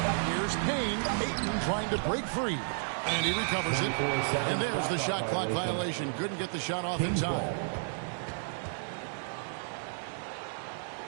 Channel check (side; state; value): left; silent; digital silence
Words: Here's Payne. Ayton trying to break free. And he recovers it. And there's the shot clock violation. Couldn't get the shot off in time.